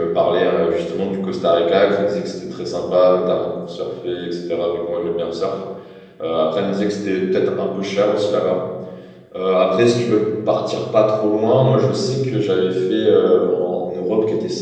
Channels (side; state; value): both; identical; correlation 1.00